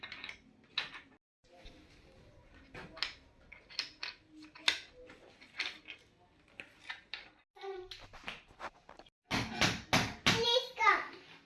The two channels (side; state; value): both; identical; correlation 1.00